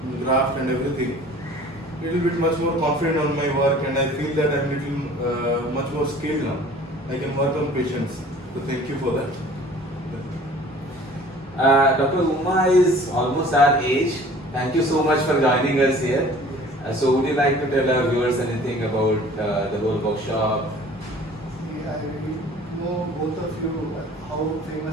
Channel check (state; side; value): normal; both; correlation 0.48